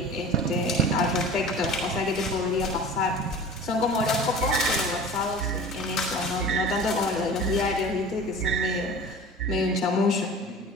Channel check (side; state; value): both; normal; correlation 0.38